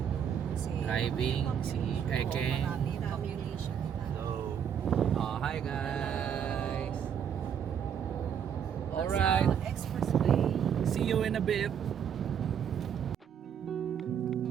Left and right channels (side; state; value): left; quieter; 8.3 dB